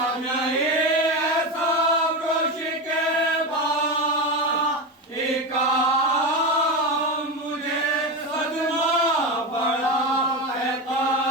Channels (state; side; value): normal; both; correlation 0.18